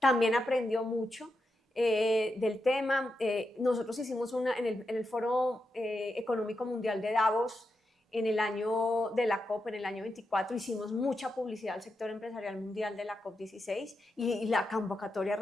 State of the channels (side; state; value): both; normal; correlation 0.87